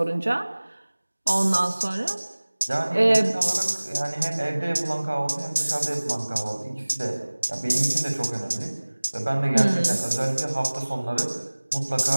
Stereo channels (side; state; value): both; inverted; correlation -1.00